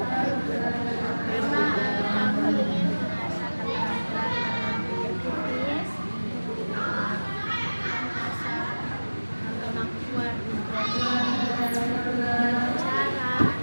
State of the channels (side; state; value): both; inverted; correlation -1.00